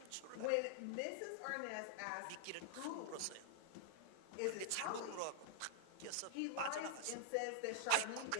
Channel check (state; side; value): different; both; correlation -0.01